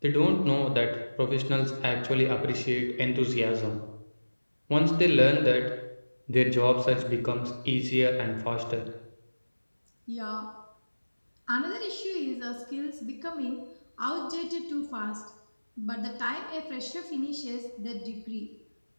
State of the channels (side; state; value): both; inverted; correlation -1.00